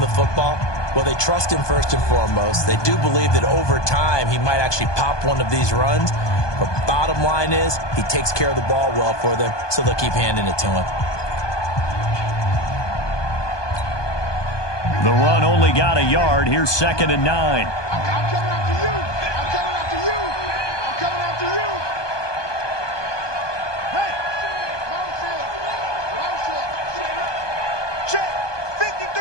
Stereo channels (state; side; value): late; right; 1.2 ms